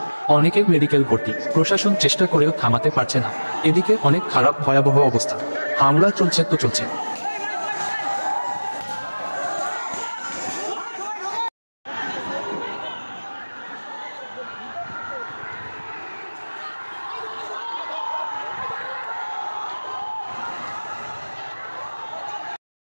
অনেকে মেডিকেল ভর্তি। প্রশাসন চেষ্টা করেও থামাতে পারছে না। এদিকে অনেক খারাপ ভয়াবহ অবস্থা, হামলা চলছে তো চলছে।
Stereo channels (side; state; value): both; inverted; correlation -1.00